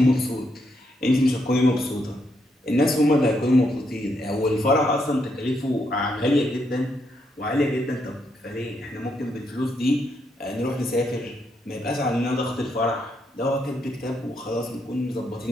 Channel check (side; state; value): both; normal; correlation 0.78